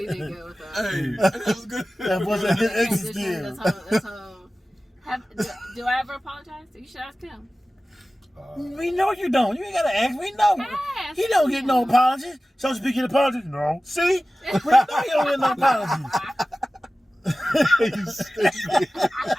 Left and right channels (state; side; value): normal; both; correlation 0.96